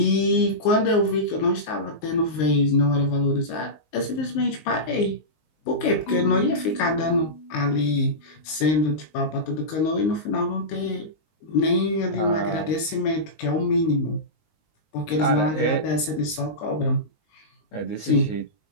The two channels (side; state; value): right; late; 19 ms